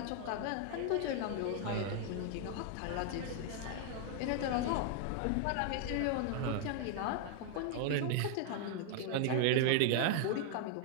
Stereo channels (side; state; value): both; different; correlation 0.00